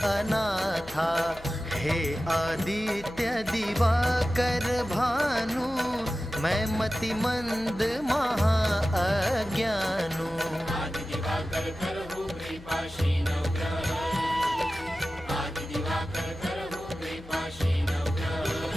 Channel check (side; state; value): left; noise; hum, 18 dB below the sound